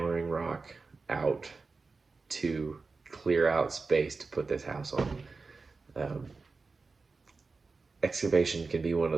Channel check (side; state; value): left; quieter; 4.2 dB